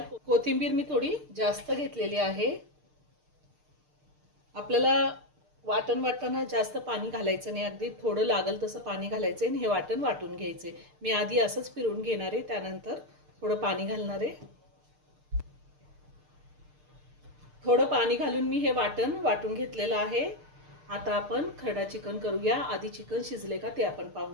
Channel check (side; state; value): left; late; 6.6 ms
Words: कोथिंबीर मी थोडी जास्त घेतलेली आहे. आपल्याला वाटण वाटताना जास्त पाणी घालायचं नाही, अगदी थोडं लागल तसं पाणी घालायचं आणि हे वाटण वाटून घ्यायचे. मी आधी असंच फिरवून घेणार आहे, त्यानंतर थोडं पाणी घालणार आहे. थोडं पाणी घालून मी हे वाटण वाटून घेतलेलं आहे. आता आपण खरडा चिकन करूया. आधी चिकन शिजले का ते आपण